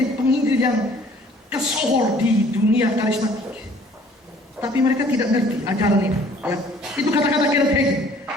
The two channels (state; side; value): normal; both; correlation 0.55